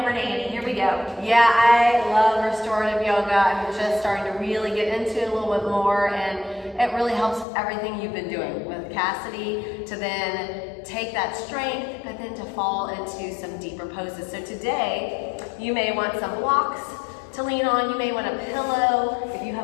to Annie. Here we go. Yeah, I love restorative yoga. I'm just starting to really get into it a little bit more, and it really helps everything you've been doing with Cassidy to then take that strength, but then to fall into some deeper poses. So today, you may want some blocks to lean on. You may want a pillow. If you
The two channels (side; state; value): right; drops out; at 7.5 s